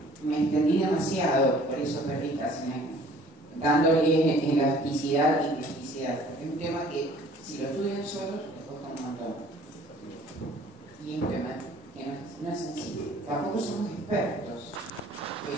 me extendí demasiado, por eso perdí casi un año, dándole elasticidad y plasticidad. Es un tema que, si lo estudian solos, les cuesta un montón. Y es un tema que no es sencillo. Tampoco somos expertos,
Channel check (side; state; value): both; normal; correlation 0.53